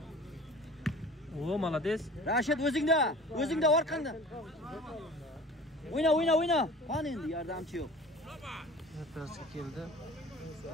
O, молодец. Rashid o'zingda orqanda. O'yna. Qani endi yordamchi yo'q. Vartasi keldi.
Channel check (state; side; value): normal; both; correlation 0.43